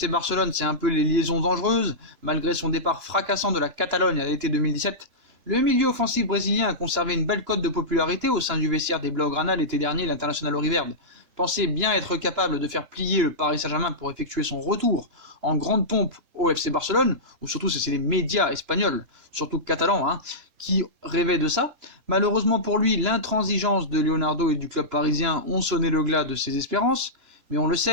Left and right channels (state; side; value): late; left; 3.0 ms